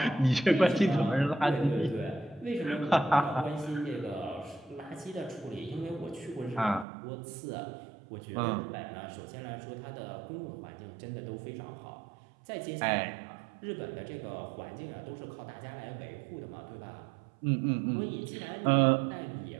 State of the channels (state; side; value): drops out; left; at 6.9 s